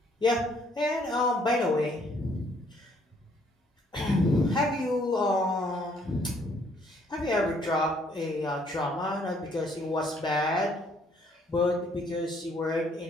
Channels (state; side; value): normal; both; correlation 0.65